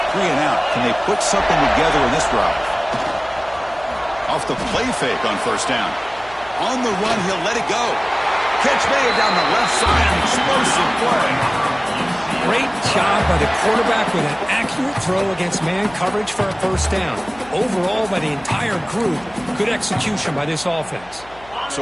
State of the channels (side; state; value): left; noise; hum, 24 dB below the sound